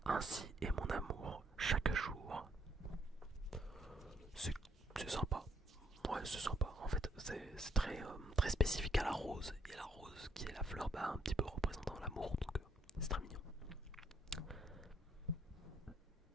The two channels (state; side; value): normal; both; correlation 0.70